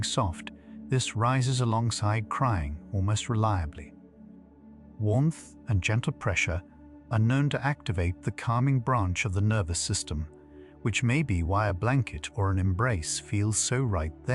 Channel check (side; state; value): both; identical; correlation 1.00